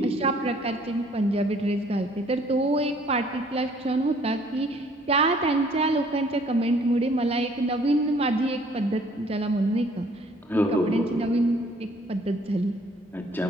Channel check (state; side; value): normal; both; correlation 0.59